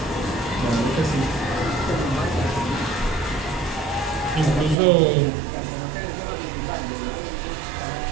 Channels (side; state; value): left; drops out; at 4.8 s